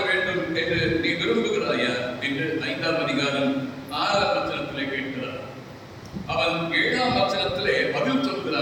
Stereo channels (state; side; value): identical; both; correlation 1.00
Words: வேண்டும் என்று நீ விரும்புகிறாயா என்று 5ஆம் அதிகாரம் 6ஆம் வசனத்திலே கேட்கிறார். அவன் 7ஆம் வசனத்திலே பதில்